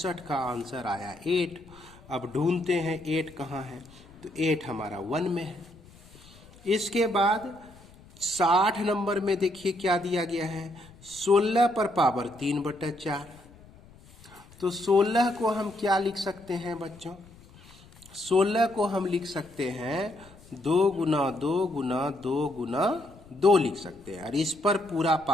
का आंसर आया 8। अब ढूंढते हैं 8 कहाँ है, तो 8 हमारा 1 में है। इसके बाद 60 नंबर में देखिए क्या दिया गया है, 16 पर पावर 3/4। तो 16 को हम क्या लिख सकते हैं बच्चों, 16 को हम लिख सकते हैं 2 गुना 2 गुना 2 गुना 2 लिख सकते हैं, और इस पर पूरा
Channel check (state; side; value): noise; left; rumble, 23 dB below the sound